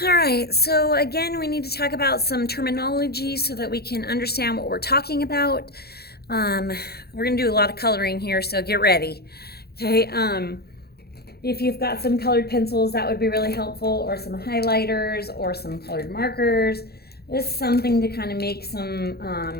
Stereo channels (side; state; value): right; late; 0.46 ms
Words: All right, so again, we need to talk about some terminology so that we can understand what we're talking about. We're going to do a lot of coloring here, so get ready. Okay, if you've got some colored pencils, that would be really helpful, or some highlighters or some colored markers. Just something to kind of make